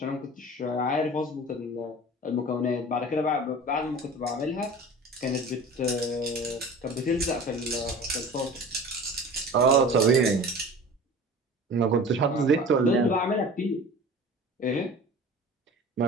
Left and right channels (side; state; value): both; normal; correlation 0.39